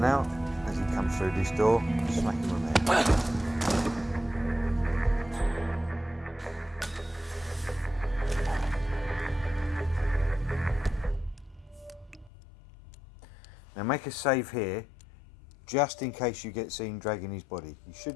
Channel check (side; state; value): right; drops out; at 12.3 s